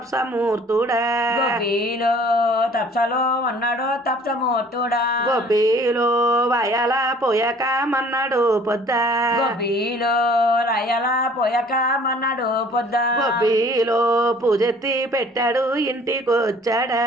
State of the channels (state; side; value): normal; both; correlation 0.53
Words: గొబ్బిలో తప్సలో ఉన్నాడు తప్సమూర్తుడా గొబ్బిలో వయల పోయక మన్నాడు పొద్ద గొబ్బిలో రయల పోయక మన్నాడు పొద్ద గొబ్బిలో పూజెత్తి పెట్టాడు ఇంటికొచ్చాడా